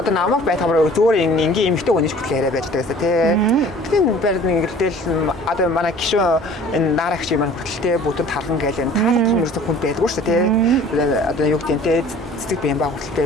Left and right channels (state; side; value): normal; both; correlation 0.48